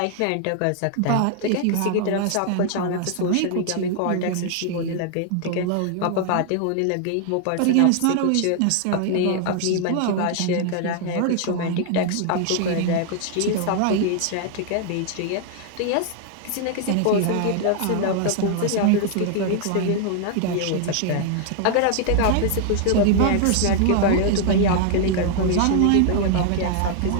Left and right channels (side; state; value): both; different; correlation 0.00